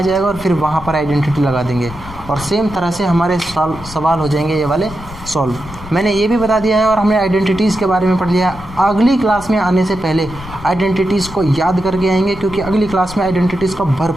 जाएगा और फिर वहाँ पर आइडेंटिटी लगा देंगे और सेम तरह से हमारे सवाल हो जाएंगे ये वाले सॉल्व। मैंने ये भी बता दिया है और हमने आइडेंटिटीज़ के बारे में पढ़ लिया। अगली क्लास में आने से पहले आइडेंटिटीज़ को याद करके आएंगे क्योंकि अगली क्लास में आइडेंटिटीज़ का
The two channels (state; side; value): noise; left; rumble, 15 dB below the sound